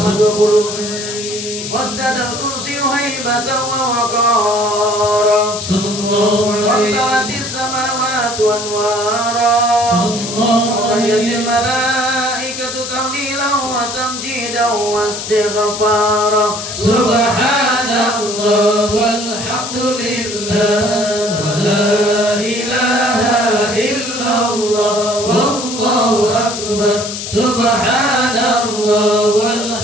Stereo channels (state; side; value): noise; left; hiss, 7 dB below the sound